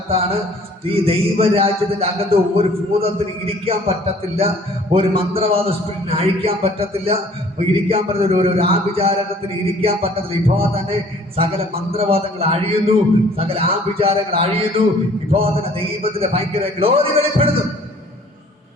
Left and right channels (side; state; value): both; normal; correlation 0.54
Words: ഈ ദൈവരാജ്യത്തിന്റെ അകത്ത് ഒരു ഭൂതത്തിന് ഇരിക്കാൻ പറ്റത്തില്ല, ഒരു മന്ത്രവാദ സ്പിരിറ്റിന് അഴിക്കാൻ പറ്റത്തില്ല, ഇരിക്കാൻ പറ്റുന്ന ഒരു ആഭിചാരകത്തിന് ഇരിക്കാൻ പറ്റത്തില്ല. ഇപ്പോൾ തന്നെ സകല മന്ത്രവാദങ്ങൾ അഴിയുന്നു, സകല ആഭിചാരങ്ങൾ അഴിയുന്നു. ഇപ്പോൾ തന്നെ ദൈവത്തിന്റെ ഭയങ്കര ഗ്ലോറി വെളിപ്പെടുന്നു.